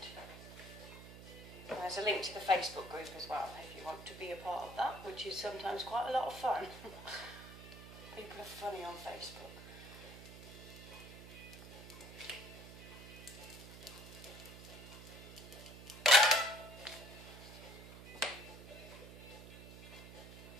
And there's a link to the Facebook group as well if you want to be a part of that, which is sometimes quite a lot of fun. People are funny on Facebook.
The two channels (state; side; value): noise; right; hum, 14 dB below the sound